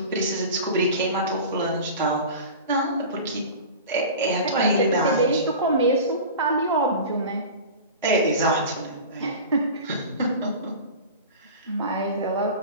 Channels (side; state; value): both; inverted; correlation -0.34